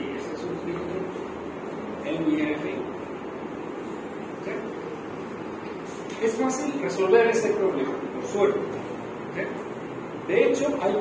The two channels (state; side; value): identical; both; correlation 1.00